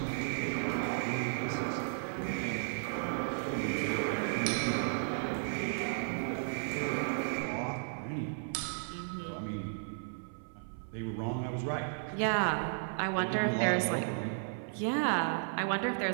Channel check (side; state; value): left; silent; 55 dB below the other